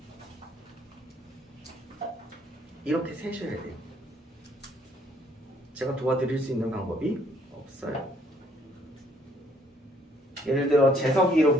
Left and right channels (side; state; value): both; normal; correlation 0.65